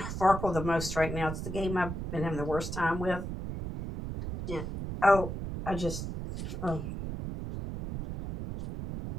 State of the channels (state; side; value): noise; right; rumble, 6 dB below the sound